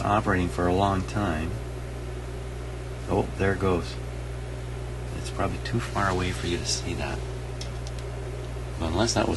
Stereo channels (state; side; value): identical; both; correlation 1.00